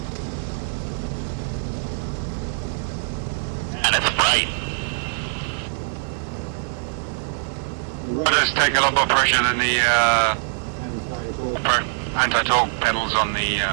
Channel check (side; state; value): left; silent; 63 dB below the other